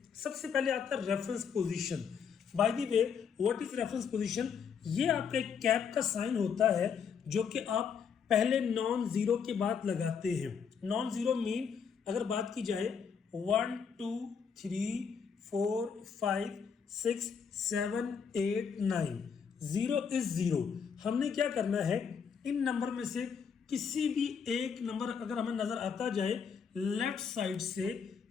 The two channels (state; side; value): quieter; right; 6.7 dB